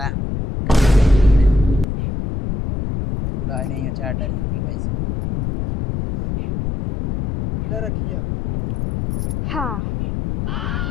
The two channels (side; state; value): left; noise; rumble, 3 dB below the sound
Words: बुढ़ा नहीं अचार डर ही कुल पैसे ले रखिए अपन। हाँ